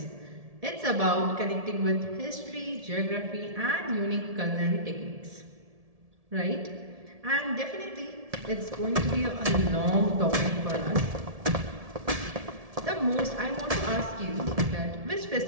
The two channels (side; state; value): left; late; 1.7 ms